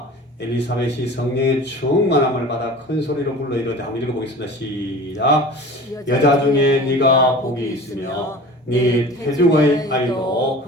엘리사벳이 성령의 충만함을 받아 큰 소리로 불러 이르되 한번 읽어보겠습니다. 시작. 여자 중에 네가 복이 있으며 네 태중의 아이도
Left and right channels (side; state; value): both; normal; correlation 0.39